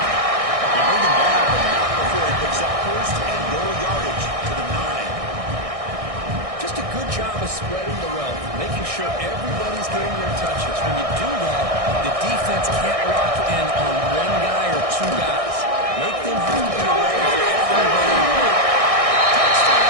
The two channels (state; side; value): late; left; 1.6 ms